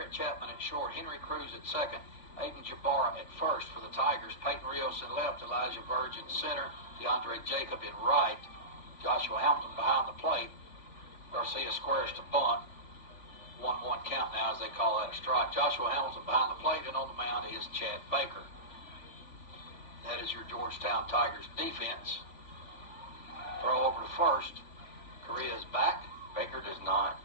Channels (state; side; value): late; right; 3.5 ms